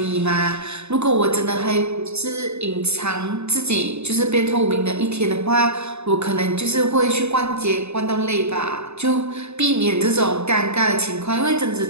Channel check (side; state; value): left; late; 0.81 ms